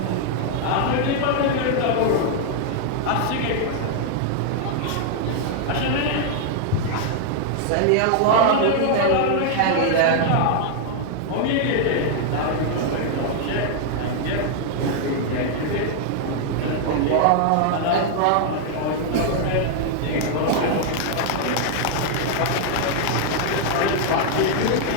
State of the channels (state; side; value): different; both; correlation 0.00